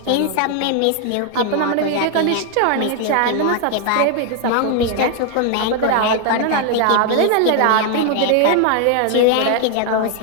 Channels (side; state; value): both; different; correlation 0.00